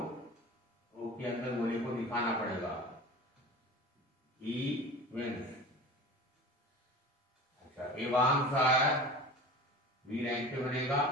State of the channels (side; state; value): both; normal; correlation 0.36